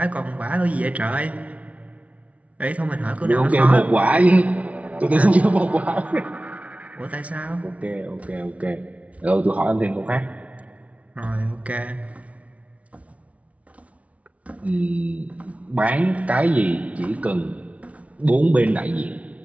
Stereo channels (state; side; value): late; left; 0.066 ms